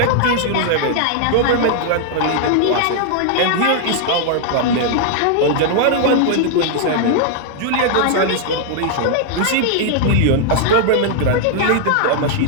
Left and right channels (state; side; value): different; both; correlation -0.01